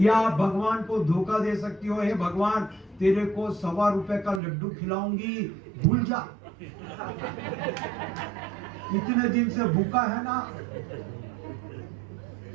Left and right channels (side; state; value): left; drops out; at 4.4 s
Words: आप भगवान को धोखा दे सकती हो, हे भगवान तेरे को ₹1.25 का लड्डू खिलाऊंगी, भूल जा, इतने दिन से भूखा है ना,